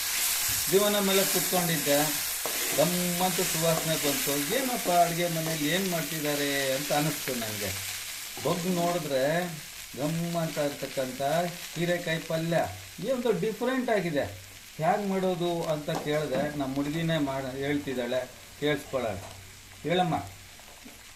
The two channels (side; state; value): both; identical; correlation 1.00